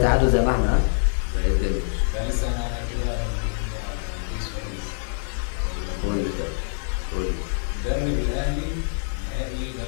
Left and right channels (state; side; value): silent; right; digital silence